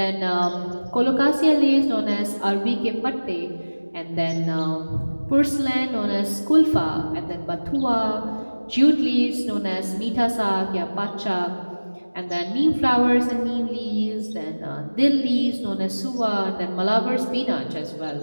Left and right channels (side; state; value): both; inverted; correlation -1.00